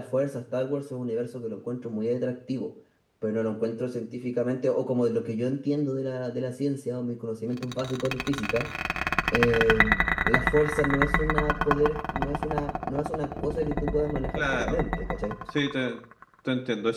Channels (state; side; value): identical; both; correlation 1.00